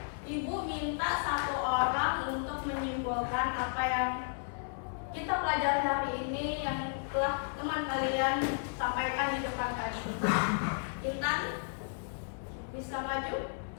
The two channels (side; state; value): right; silent; 55 dB below the other